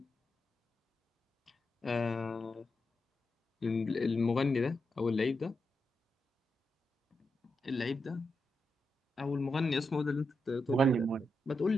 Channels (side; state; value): both; normal; correlation 0.86